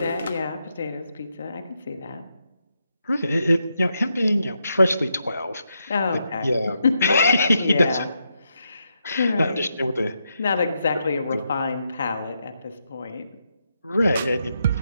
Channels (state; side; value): inverted; both; correlation -0.82